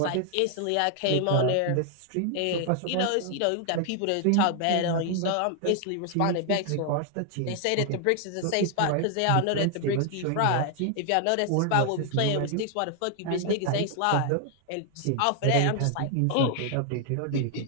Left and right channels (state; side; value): different; both; correlation 0.00